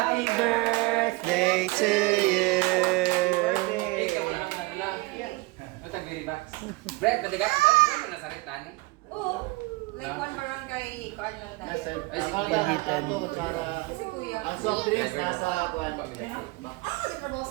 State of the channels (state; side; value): quieter; left; 23.0 dB